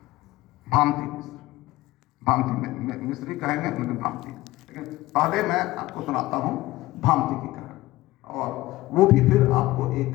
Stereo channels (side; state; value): right; quieter; 18.0 dB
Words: भामती मिश्र। भामती मिश्री कहेंगे, लेकिन भामती। लेकिन पहले मैं आपको सुनाता हूँ भामती की कहानी, और वो भी फिर आपको एक